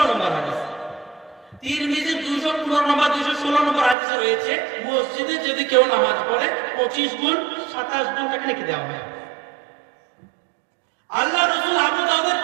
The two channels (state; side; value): drops out; left; at 4.0 s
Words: নম্বর হাদিস। তিরমিজি 215 নম্বর, 216 নম্বর হাদিসে রয়েছে, মসজিদে যদি কেউ নামাজ পড়ে 25 গুণ 27 গুণ তাকে লিখে দেওয়া হয়। আল্লাহ রাসূল আবু দাউদের